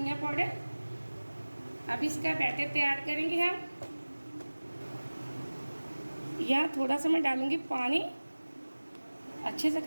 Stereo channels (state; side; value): inverted; both; correlation -1.00